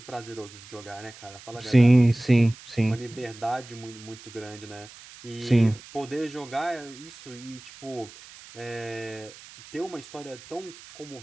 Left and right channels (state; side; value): noise; right; hiss, 19 dB below the sound